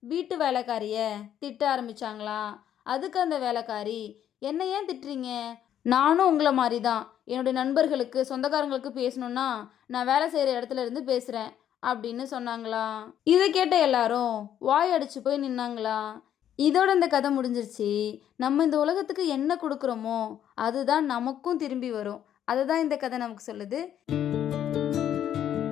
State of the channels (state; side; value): quieter; right; 10.3 dB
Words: வீட்டு வேலைக்காரிய திட்ட ஆரம்பிச்சாங்களாம். அதுக்கு அந்த வேலைக்காரி, "என்ன ஏன் திட்டுறீங்க? நானும் உங்களை மாதிரி தான். என்னுடைய நண்பர்களுக்கு, சொந்தக்காரங்களுக்கு பேசணுன்னா நான் வேலை செய்கிற இடத்துல இருந்து பேசுகிறேன்" அப்படின்னு சொன்னாங்களாம். இதை கேட்ட எல்லாரும் வாய் அடிச்சு போய் நின்னாங்களாம். இதோட இந்த கதை முடிஞ்சிருச்சு. நம்ம இந்த உலகத்துக்கு என்ன கொடுக்குறோமோ அதுதான் நமக்கும் திரும்பி வரும். அதுதான் இந்த கதை நமக்கு சொல்லுது.